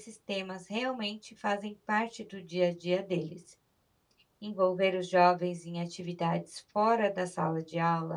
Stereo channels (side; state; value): both; identical; correlation 1.00